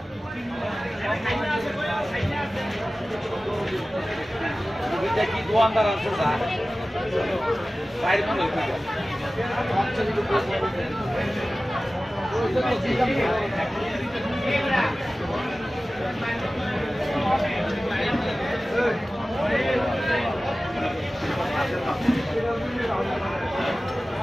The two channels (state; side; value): normal; both; correlation 0.96